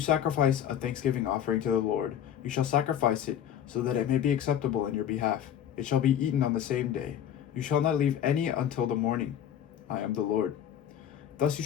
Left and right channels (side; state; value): right; quieter; 9.9 dB